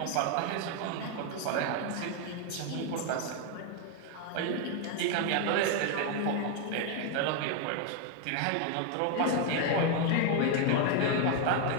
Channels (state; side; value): different; both; correlation 0.01